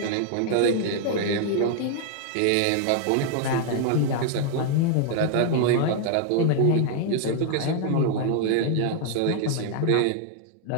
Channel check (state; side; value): different; both; correlation 0.00